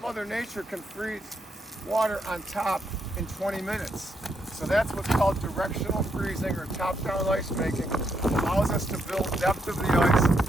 Mother Nature can freeze water on top in 20 minutes. So that's what's called directional freezing or top-down ice making. It allows us to build depth of the ice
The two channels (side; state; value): both; normal; correlation 0.78